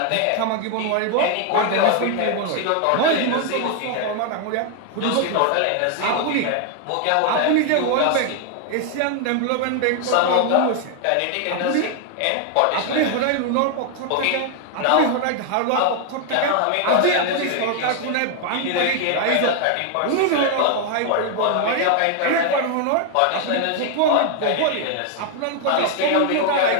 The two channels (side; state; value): both; different; correlation 0.00